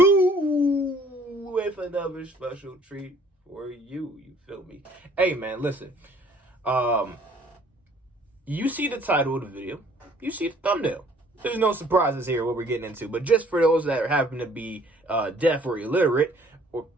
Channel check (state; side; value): normal; both; correlation 0.58